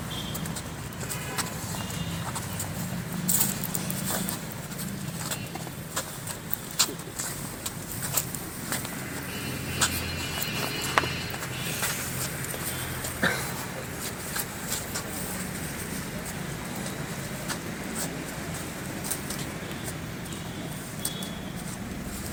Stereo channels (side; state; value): both; identical; correlation 1.00